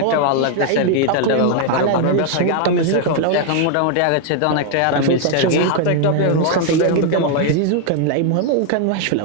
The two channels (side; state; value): both; different; correlation 0.00